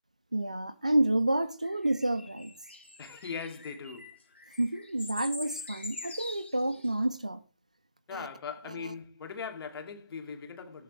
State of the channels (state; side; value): inverted; both; correlation -0.89